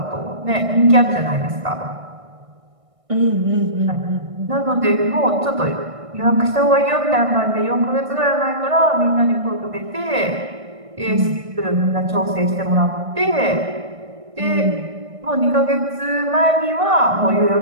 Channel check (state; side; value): late; left; 1.6 ms